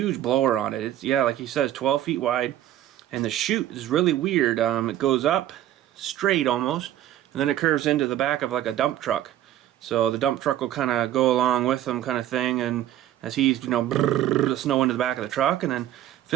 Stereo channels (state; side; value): quieter; left; 12.6 dB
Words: blower on it. It's, yeah, like he says, 12 feet wide. And the chute is really weird. It goes up straight almost, and then it curves into the back of like a dump truck. So the dump truck will kind of go along with them, kind of thing. And as he's, you know, the snow into the back of the truck, and then